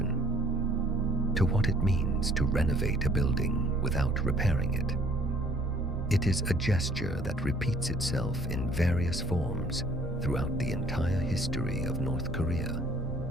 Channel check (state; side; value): noise; right; rumble, 12 dB below the sound